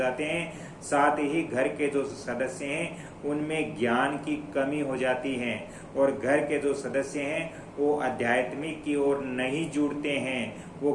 हैं। साथ ही घर के जो सदस्य हैं उनमें ज्ञान की कमी हो जाती है, और घर के जो सदस्य हैं वो आध्यात्मिक की ओर नहीं जुड़ते हैं, वो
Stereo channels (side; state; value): both; identical; correlation 1.00